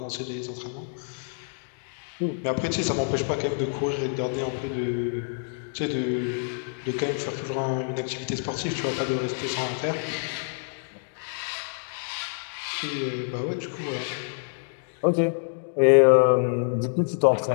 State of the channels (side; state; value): right; silent; digital silence